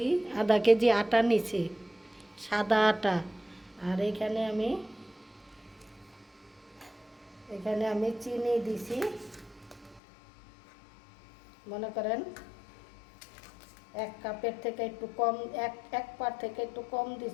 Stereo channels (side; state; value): right; drops out; at 10.0 s